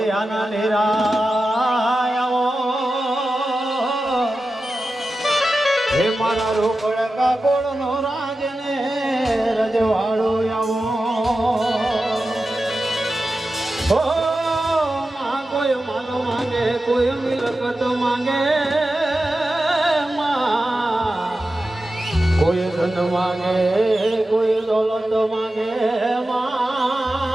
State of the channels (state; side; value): normal; both; correlation 0.93